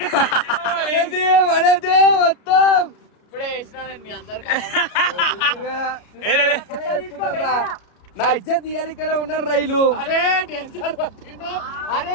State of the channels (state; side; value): late; right; 33 ms